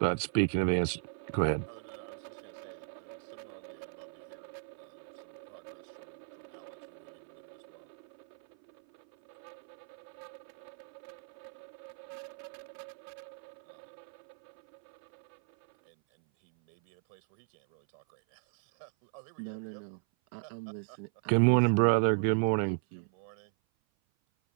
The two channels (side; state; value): left; silent; 54 dB below the other